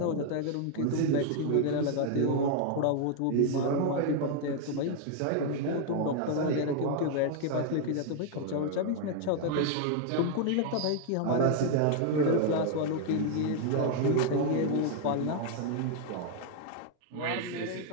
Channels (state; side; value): different; both; correlation 0.00